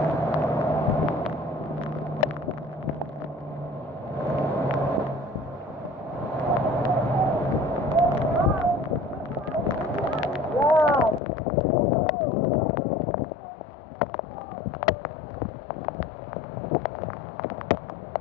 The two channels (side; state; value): right; drops out; at 11.2 s